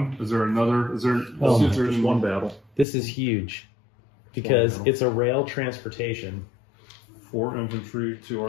Is there another? Is there? Oh, is there just one battle. This is huge because Wow. it's a rail transportation. 4 infantry, 2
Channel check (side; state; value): right; drops out; at 2.9 s